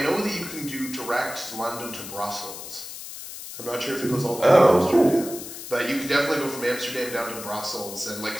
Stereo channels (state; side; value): noise; left; hiss, 11 dB below the sound